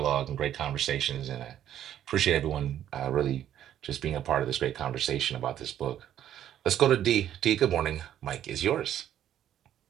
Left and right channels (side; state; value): left; quieter; 11.0 dB